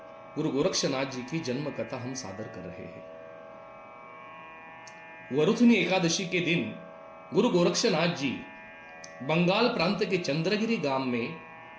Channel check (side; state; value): both; identical; correlation 1.00